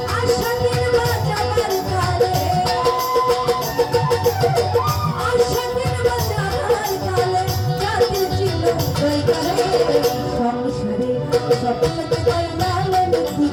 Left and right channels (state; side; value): identical; both; correlation 1.00